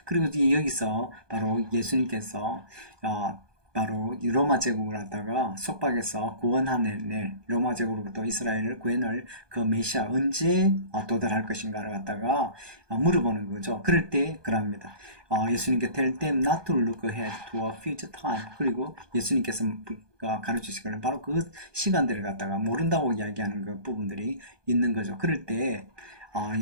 그리고 여기서 바로 예수님께서 바로 이 로마 제국을 갖다가 속박해서 구원하는 로마 제국으로부터 이스라엘을 구해낼 그 메시아 언제 도달할 것인가를 갖다가 물어보는 거죠. 그럴 때 그럽니다. 예수님께 tell them not to look ahead to a future time. 그리고 예수님께서 가르치시기를 바로 그 시간들을 갖다가 모른다고 이야기하는 그 부분들이 있는 거죠. 그럴 때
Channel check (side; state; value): left; late; 1.2 ms